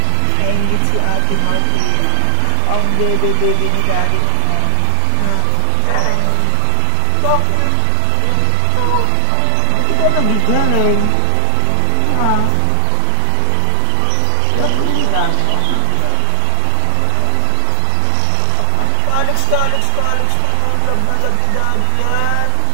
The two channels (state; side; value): different; both; correlation 0.00